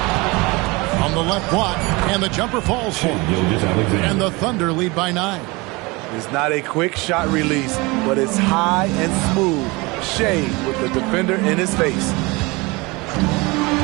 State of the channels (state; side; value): quieter; left; 24.7 dB